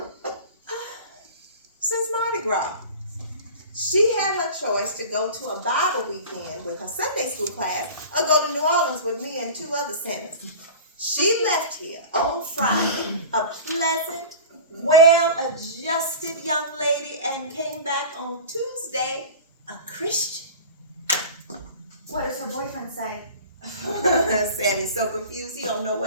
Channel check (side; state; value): both; inverted; correlation -0.36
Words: Since Mardi Gras. She had her choice to go to a Bible weekend with her Sunday school class or go to New Orleans with me and 2 other sinners. She left here on Friday, a pleasant, well-adjusted young lady, and came back on Tuesday, a Christian. What does her boyfriend say? Sammy's so confused, he don't know